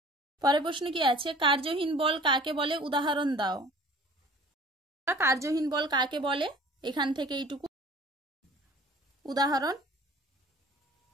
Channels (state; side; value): normal; both; correlation 0.47